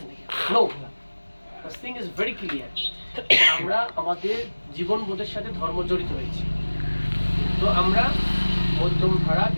নাকি? No, this thing is very clear. আমরা আমাদের জীবনবোধের সাথে ধর্ম জড়িত হয়েছি, তো আমরা মধ্যম ধারা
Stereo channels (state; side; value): inverted; both; correlation -1.00